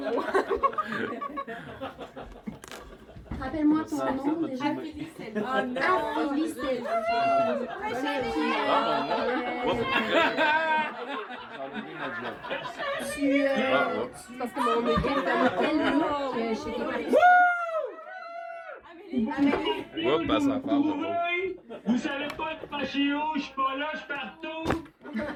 Rappelle-moi ton nom déjà. Affili Selfie. Affili Selfie. Parce que mon équipe a tel look chez tes participants. Oups, passe à part. Vous savez pas de fâcher où? Je suis pas là, je suis partout.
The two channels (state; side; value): identical; both; correlation 1.00